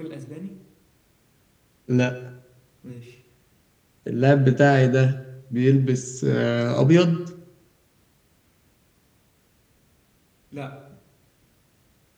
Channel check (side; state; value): both; identical; correlation 1.00